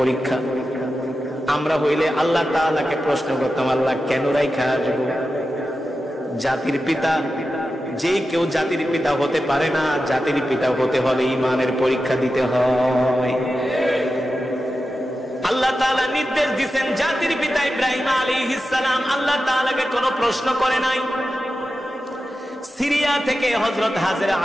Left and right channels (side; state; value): both; normal; correlation 0.92